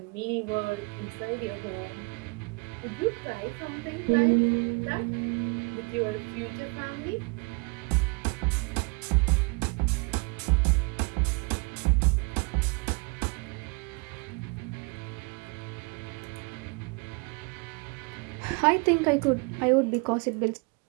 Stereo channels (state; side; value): quieter; left; 31.4 dB